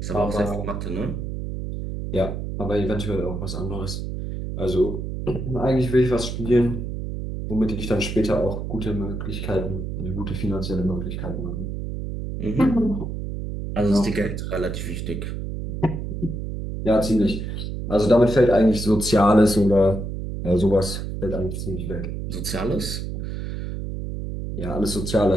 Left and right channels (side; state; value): right; noise; hum, 5 dB below the sound